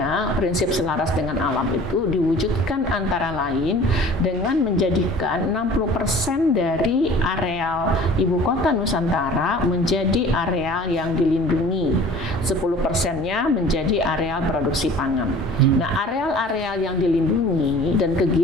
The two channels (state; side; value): normal; both; correlation 0.46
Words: prinsip selaras dengan alam itu diwujudkan antara lain dengan menjadikan 60% dari areal Ibu Kota Nusantara menjadi areal yang dilindungi, 10%-nya menjadi areal produksi pangan. Nah, areal-areal yang dilindungi dan